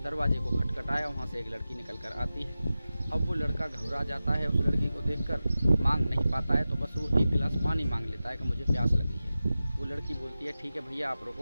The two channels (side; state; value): both; inverted; correlation -0.94